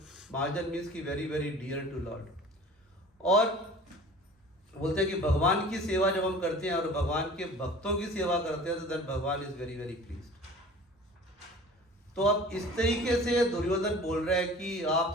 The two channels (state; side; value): normal; both; correlation 0.44